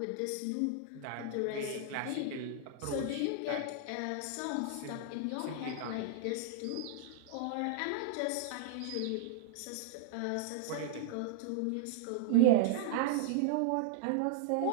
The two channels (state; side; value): different; both; correlation -0.01